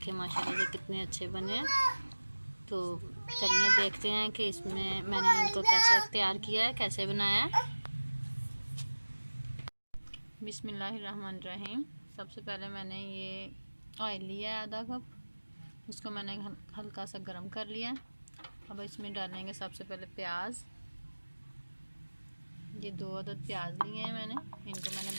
माशाल्लाह से कितने अच्छे बने हैं। तो चलिए देखते हैं कि इसमें मैंने इनको कैसे तैयार किया है, कैसे बनाया है। बिस्मिल्लाहिर्रहमानिर्रहीम। सबसे पहले मैंने ये ऑयल लिया है आधा कप, उसको मैंने हल्का सा गर्म कर लिया। अब इसमें डालेंगे सबसे पहले प्याज। ये 2 अदद प्याज लिए हैं मैंने, इनको मैंने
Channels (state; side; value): inverted; both; correlation -1.00